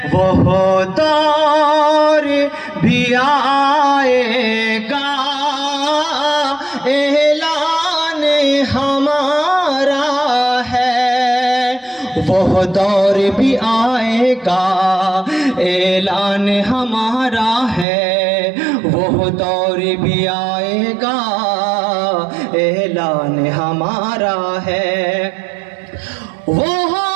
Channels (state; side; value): drops out; left; at 17.9 s